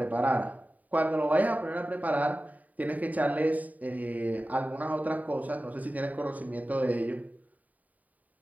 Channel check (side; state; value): left; late; 0.074 ms